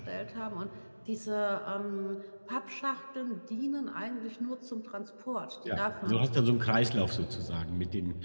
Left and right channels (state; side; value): inverted; both; correlation -1.00